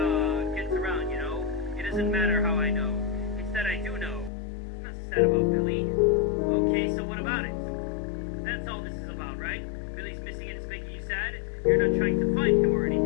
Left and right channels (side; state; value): right; drops out; at 4.3 s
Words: gets around, you know. It doesn't matter how I know. It's that I do know. I'm not sad about Billy. Okay, so what about it? That's all this is about, right? Billy's missing and it's making you sad. You're not trying to find him or